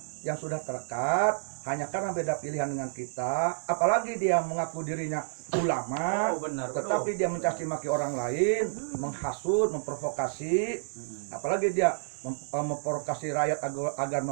yang sudah terekat hanya karena beda pilihan dengan kita, apalagi dia mengaku dirinya ulama, tetapi dia mencaci maki orang lain, menghasut, memprovokasi, apalagi dia memprovokasi rakyat agar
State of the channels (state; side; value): silent; left; digital silence